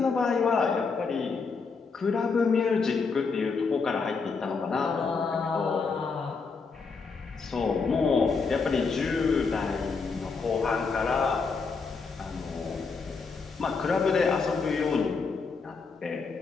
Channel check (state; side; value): quieter; right; 4.8 dB